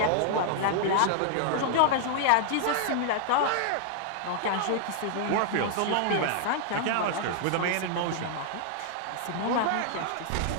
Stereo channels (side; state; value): both; different; correlation -0.01